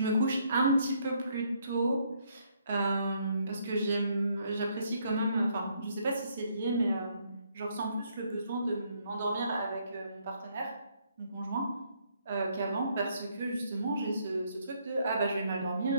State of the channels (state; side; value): inverted; both; correlation -0.70